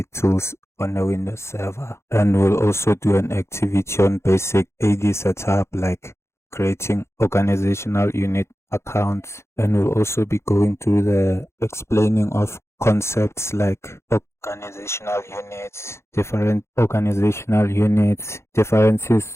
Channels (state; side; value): late; right; 0.13 ms